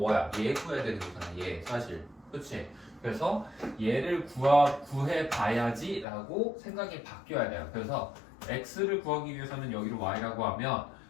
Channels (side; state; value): right; drops out; at 6.1 s